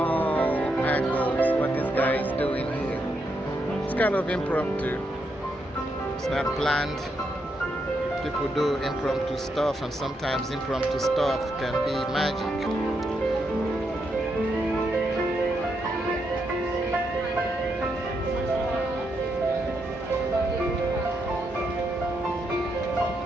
angles what this guy is doing here. It's kind of impromptu. It's not planned. People do impromptu stuff, and sometimes impromptu stuff can be magic.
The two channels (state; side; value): normal; both; correlation 0.81